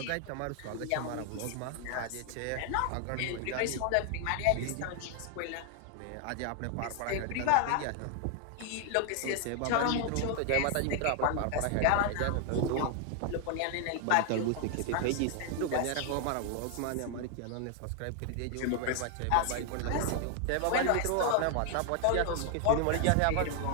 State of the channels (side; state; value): both; different; correlation 0.00